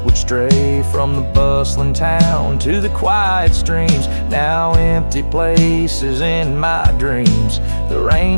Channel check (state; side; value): inverted; both; correlation -1.00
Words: would stray, from the bustling town to the quiet streams, now empty places in my dreams. The